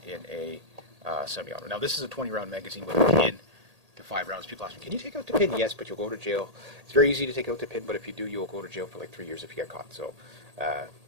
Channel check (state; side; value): late; left; 1.8 ms